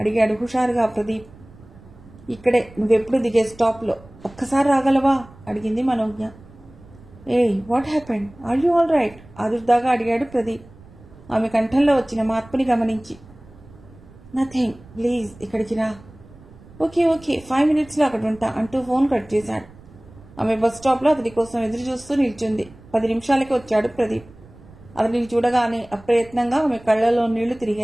అడిగాడు హుషారుగా ప్రదీప్. ఇక్కడే, నువ్వెప్పుడు దిగే స్టాప్లో. ఒక్కసారి రాగలవా? అడిగింది మనోజ్ఞ. ఏయ్, what happened? Are you all right? ఆదుర్దాగా అడిగాడు ప్రదీప్, ఆమె కంఠంలో వచ్చిన మార్పుని గమనించి. నథింగ్, ప్లీజ్ ఇక్కడికి రా. ఓకే ఓకే, 5 minutesలో అక్కడ ఉంటా అంటూ ఫోన్ కట్ చేశాడు. ఆమె బస్ స్టాప్లో అతడి కోసం ఎదురు చూస్తూ నిల్చుంది. 10 నిమిషాలకి వచ్చాడు ప్రదీప్. అతడిని చూడగానే అప్రయత్నంగా ఆమె కళ్లలో నీళ్లు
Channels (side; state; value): right; noise; rumble, 22 dB below the sound